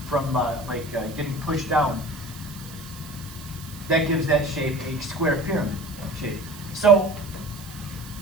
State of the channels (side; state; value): right; noise; hiss, 17 dB below the sound